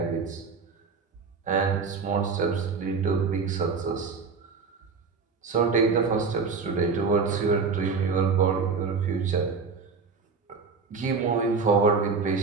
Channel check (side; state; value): left; quieter; 5.1 dB